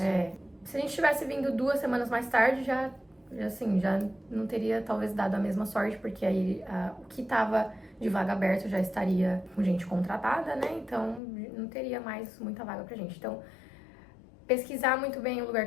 Se a gente tivesse vindo 2 semanas mais tarde, já não teria talvez dado a mesma sorte, porque aí o que estava de vaga aberta já estaria com gente contratada, né? Então não teria mais muita vaga pra gente. Então, pesquisar muito bem o lugar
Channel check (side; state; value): right; drops out; at 11.2 s